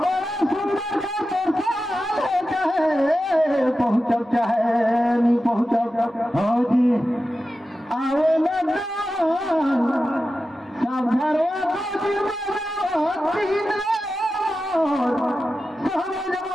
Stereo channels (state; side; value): normal; both; correlation 0.92